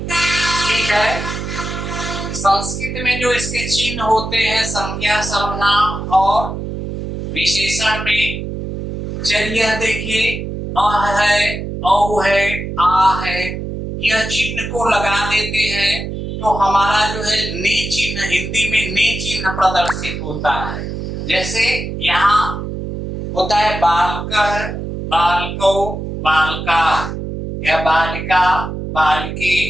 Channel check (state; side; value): noise; right; hum, 6 dB below the sound